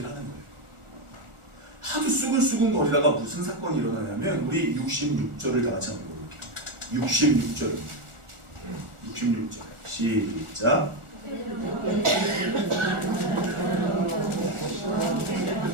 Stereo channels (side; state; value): left; late; 1.4 ms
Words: 하는 거예요. 하도 수군거리다가 무슨 사건이 일어나냐면 우리 66절을 다 같이 한번 읽어볼게요. 66절 시작.